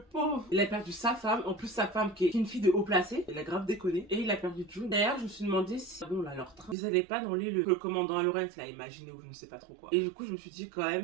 Il a perdu sa femme, en plus sa femme qui est une fille de haut placé. Il a grave déconné. Et il a perdu June. D'ailleurs, je me suis demandé si, bon là, leur train, ils allaient pas dans l'île que le commandant Lawrence l'a imaginé ou je ne sais pas trop quoi. Et du coup, je me suis dit quand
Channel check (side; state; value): left; drops out; at 6.8 s